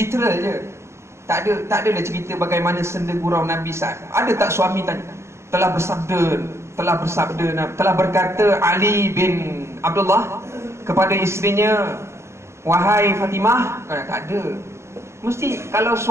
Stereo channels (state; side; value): late; left; 0.13 ms